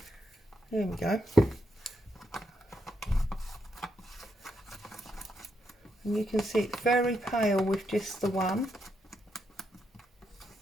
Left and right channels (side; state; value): both; normal; correlation 0.80